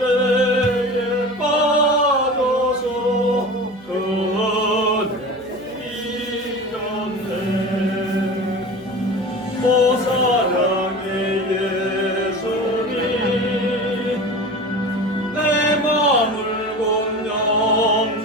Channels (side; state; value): right; noise; hum, 25 dB below the sound